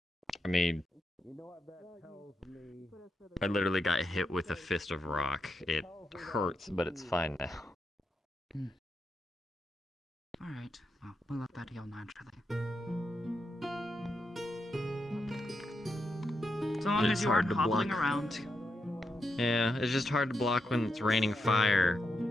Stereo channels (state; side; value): normal; both; correlation 0.84